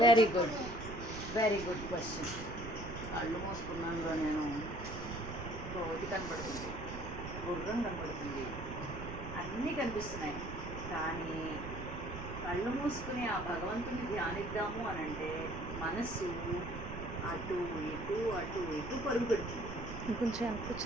very good very good question. కళ్ళు మూసుకున్నాను నేను, కోతి కనపడుతుంది, గుర్రం కనపడుతుంది, అన్నీ కనిపిస్తున్నాయి. కానీ కళ్ళు మూసుకుని ఆ భగవంతుని ధ్యానిద్దాము అని అంటే మనస్సు అటు ఇటు అటు ఇటు పరుగు పెడుతుంది.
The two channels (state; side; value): noise; right; rumble, 8 dB below the sound